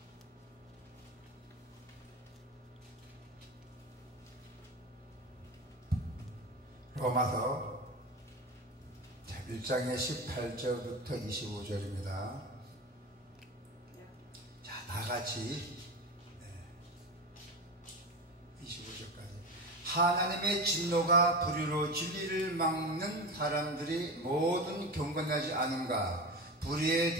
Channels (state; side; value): normal; both; correlation 0.24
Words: 로마서 1장의 18절부터 25절입니다. 자, 다같이 25절까지. 하나님의 진노가 불의로 진리를 막는 사람들이 모든 경건하지 않은가? 불의에